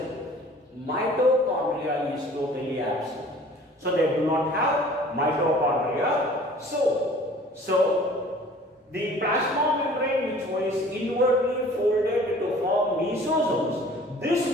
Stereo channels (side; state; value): both; normal; correlation 0.49